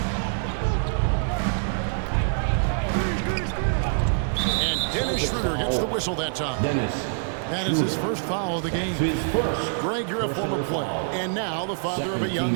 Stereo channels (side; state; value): left; silent; 62 dB below the other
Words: And Dennis Schroeder gets the whistle that time. That is his first foul of the game. His first. Greg, you're a former player, and now the father of a young